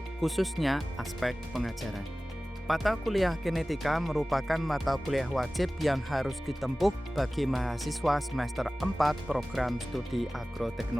khususnya aspek pengajaran. Mata kuliah genetika merupakan mata kuliah wajib yang harus ditempuh bagi mahasiswa semester 4 program studi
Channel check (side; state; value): both; normal; correlation 0.97